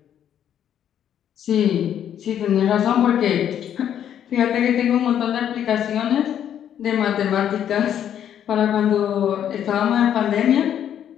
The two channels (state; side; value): quieter; right; 9.8 dB